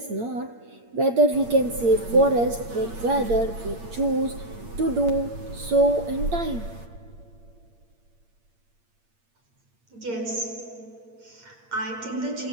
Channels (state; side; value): late; left; 8.7 ms